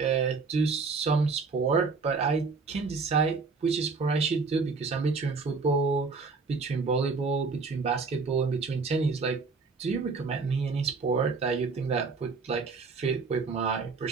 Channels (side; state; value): left; quieter; 4.5 dB